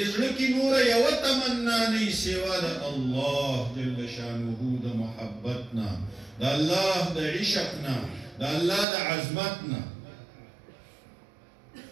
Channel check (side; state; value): left; drops out; at 8.8 s